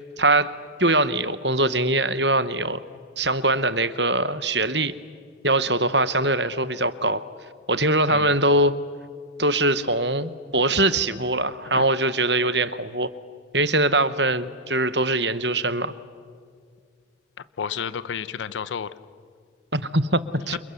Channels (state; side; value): normal; both; correlation -0.10